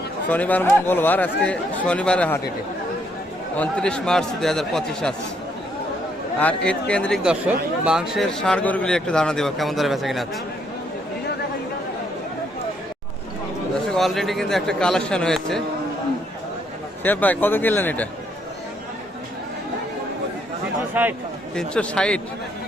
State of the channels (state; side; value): normal; both; correlation 0.71